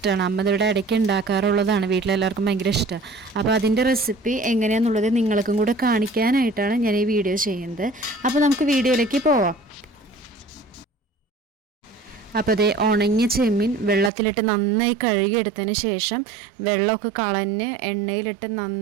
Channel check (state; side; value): drops out; left; at 14.1 s